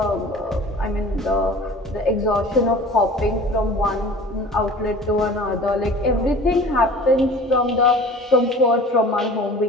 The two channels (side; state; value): both; normal; correlation 0.43